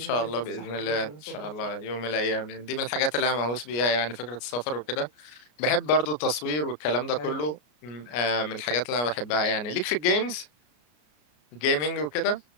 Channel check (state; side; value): late; right; 33 ms